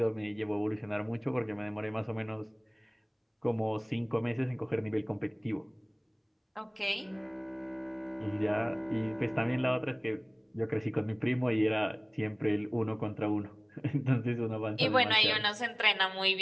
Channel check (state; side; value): identical; both; correlation 1.00